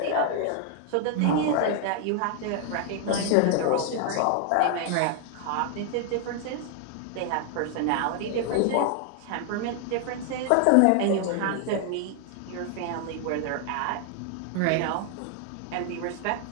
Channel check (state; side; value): different; both; correlation 0.00